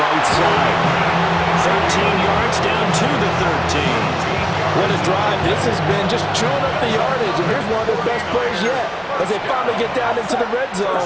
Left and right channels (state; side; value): identical; both; correlation 1.00